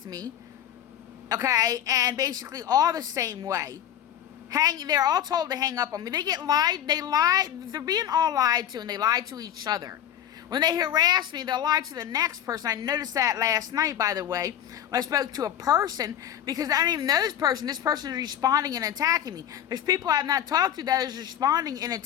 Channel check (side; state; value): right; quieter; 10.7 dB